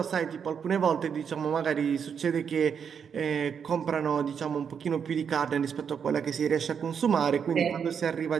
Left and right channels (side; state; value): left; quieter; 7.1 dB